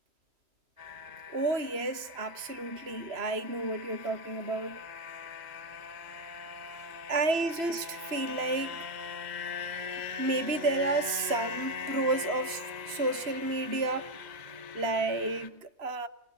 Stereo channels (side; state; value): left; late; 3.0 ms